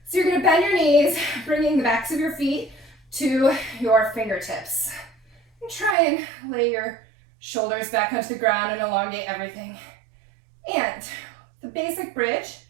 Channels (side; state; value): left; drops out; at 6.0 s